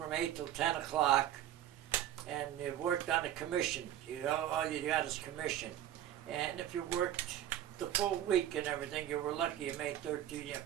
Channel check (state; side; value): quieter; left; 11.7 dB